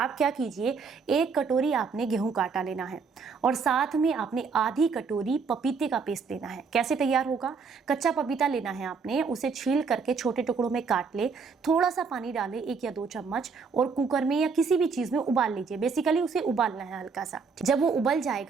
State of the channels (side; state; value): left; quieter; 5.2 dB